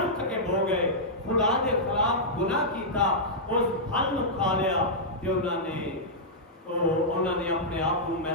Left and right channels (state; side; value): normal; both; correlation -0.10